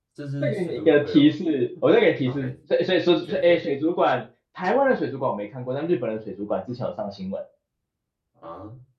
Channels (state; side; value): identical; both; correlation 1.00